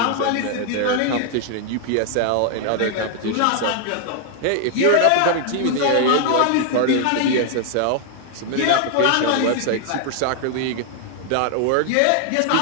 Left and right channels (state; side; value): different; both; correlation 0.00